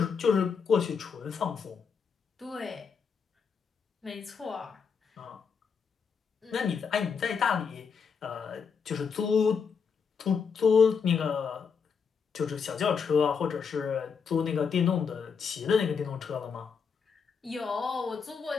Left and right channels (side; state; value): right; quieter; 6.1 dB